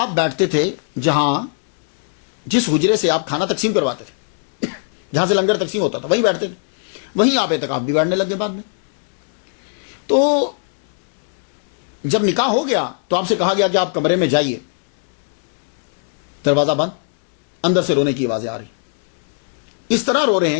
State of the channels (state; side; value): silent; right; 66 dB below the other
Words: بیٹھتے تھے جس حجرے سے آپ کھانا تقسیم کرواتے تھے، جہاں سے لنگر تقسیم ہوتا تھا، وہیں بیٹھتے تھے. وہیں آپ اعتکاف بھی بیٹھنے لگے بعد میں. تو جب نکاح ہو گیا تو آپ سے کہا گیا کہ آپ کمرے میں جائیے. دروازہ بند، اندر سے رونے کی آوازیں آ رہی. اس طرح رو رہے